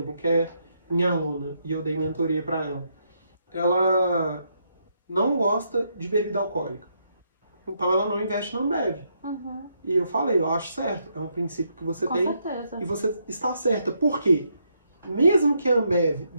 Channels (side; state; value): both; inverted; correlation -0.77